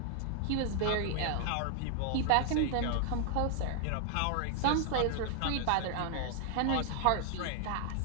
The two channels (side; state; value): both; different; correlation 0.00